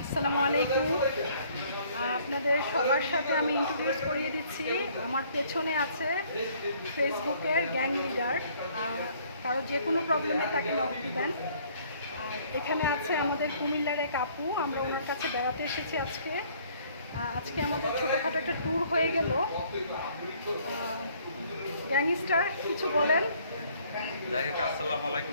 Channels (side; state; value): both; inverted; correlation -0.60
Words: আসসালামু আলাইকুম। আপনাদের সবার সাথে আমি ইন্ট্রোডিউস করিয়ে দিচ্ছি। আমার পেছনে আছে ফেসবুকের গ্যাং লিডার। কারো যে কোনো প্রবলেমে তাকে নক দিবেন। আর এখানে আছে আমাদের কুমিল্লার এক আপু, আমরা ওনার কাছে বেড়াতে এসেছি আজকে। আজকে আমাদের ছোটোখাটো একটা ট্যুর হয়ে গেল। গ্যাংস্টার কিছু বলেন। যাই হোক, আসসালামু